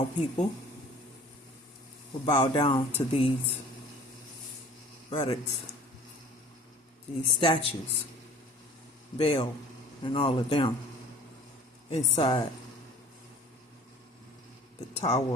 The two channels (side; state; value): both; normal; correlation 0.48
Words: people will bow down to these relics, these statues, Baal and all of them inside the